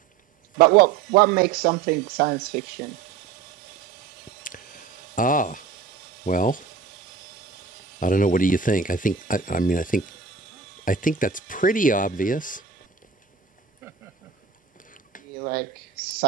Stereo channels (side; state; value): left; quieter; 6.0 dB